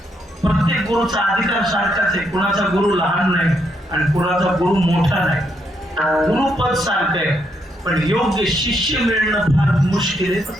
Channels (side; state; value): both; normal; correlation 0.77